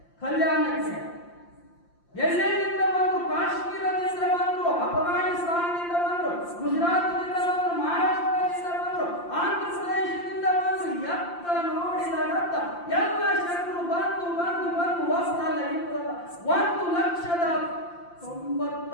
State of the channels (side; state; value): right; late; 5.8 ms